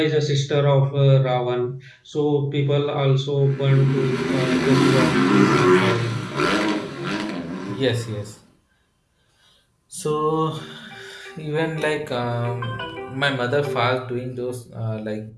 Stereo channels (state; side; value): identical; both; correlation 1.00